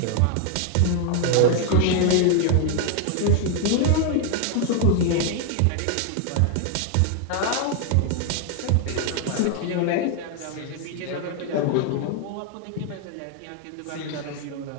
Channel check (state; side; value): different; both; correlation 0.01